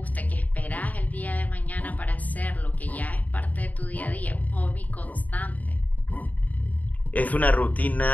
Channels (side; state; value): right; late; 0.075 ms